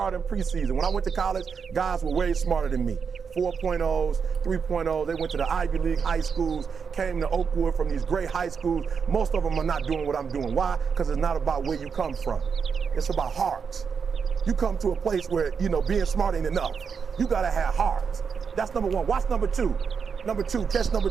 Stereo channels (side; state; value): left; quieter; 6.1 dB